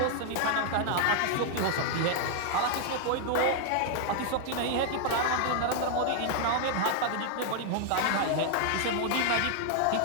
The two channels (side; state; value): both; different; correlation 0.00